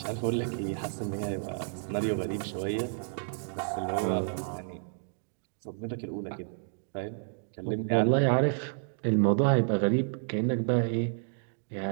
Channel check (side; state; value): left; silent; digital silence